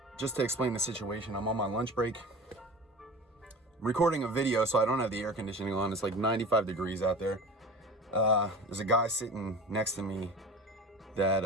Just to explain the situation, I'm on my lunch break. I'm recording a video, so I don't have the air conditioning on. It's like 95 degrees out there. There's a guy sitting next to me that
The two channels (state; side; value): normal; both; correlation 0.35